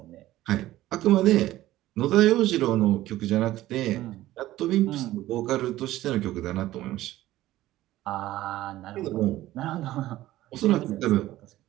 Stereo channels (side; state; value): left; quieter; 15.4 dB